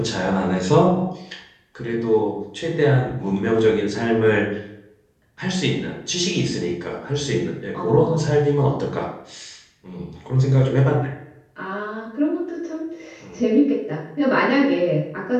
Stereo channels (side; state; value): both; identical; correlation 1.00